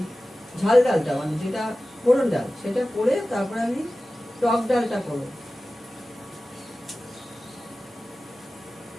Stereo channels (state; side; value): normal; both; correlation 0.96